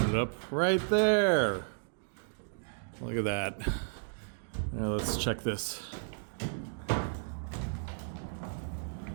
up. Right there! Look at that. Now let's check this.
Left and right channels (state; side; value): silent; left; digital silence